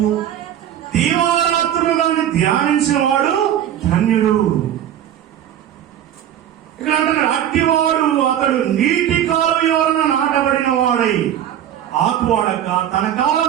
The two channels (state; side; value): quieter; left; 10.7 dB